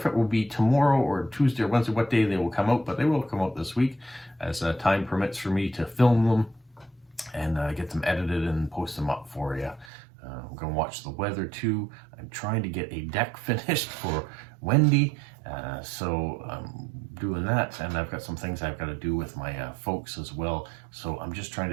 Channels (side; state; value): left; drops out; at 9.9 s